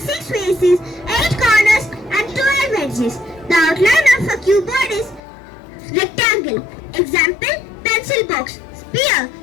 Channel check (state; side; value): drops out; right; at 5.2 s